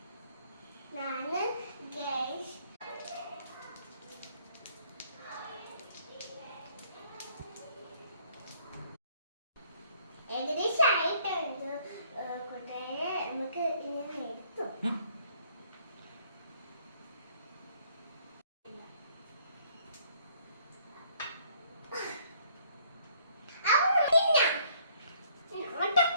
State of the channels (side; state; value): both; inverted; correlation -0.63